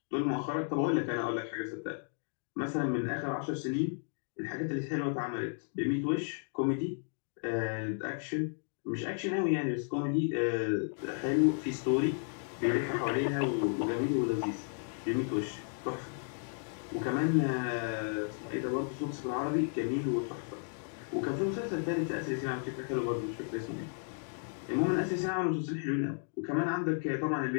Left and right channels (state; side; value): silent; right; 55 dB below the other